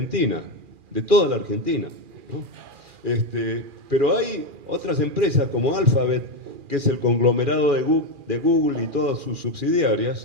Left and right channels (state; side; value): late; left; 2.4 ms